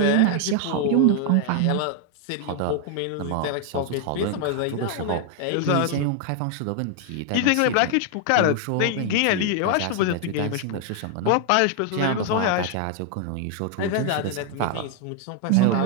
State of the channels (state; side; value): different; both; correlation 0.00